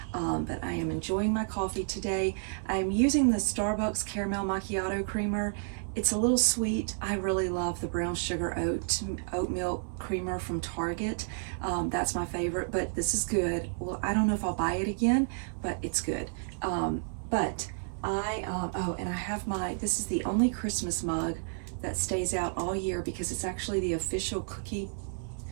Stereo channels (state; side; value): silent; left; 56 dB below the other